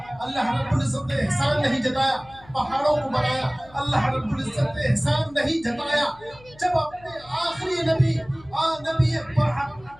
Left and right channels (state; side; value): noise; left; hum, 24 dB below the sound